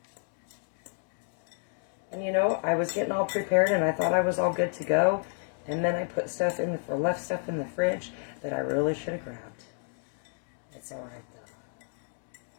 And you know, I was getting all prepared and I thought I was all good to go. And then I put stuff in the, left stuff in the fridge that I really should have grabbed. It's all right though.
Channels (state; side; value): silent; right; 55 dB below the other